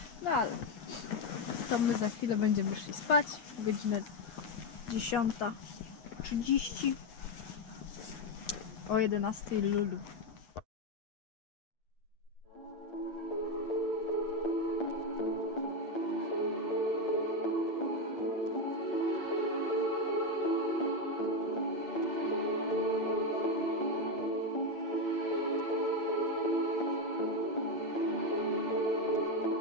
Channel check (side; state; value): right; late; 8.7 ms